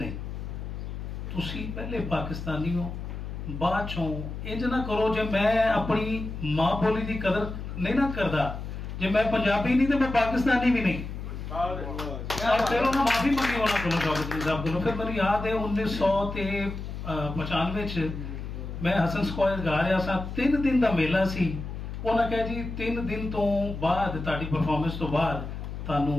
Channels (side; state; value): left; noise; hum, 7 dB below the sound